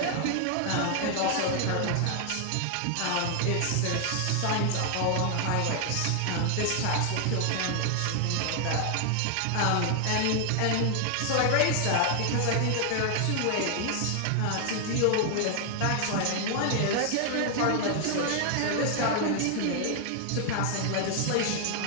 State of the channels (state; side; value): different; both; correlation 0.00